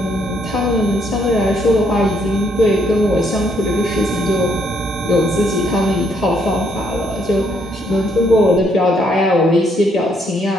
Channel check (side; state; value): both; normal; correlation 0.71